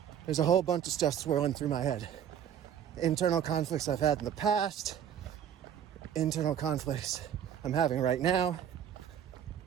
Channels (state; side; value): quieter; left; 9.4 dB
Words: There's a whole bunch of stuff swirling through my head. Internal conflicts I've had in the past, internal conflicts I'm having right now.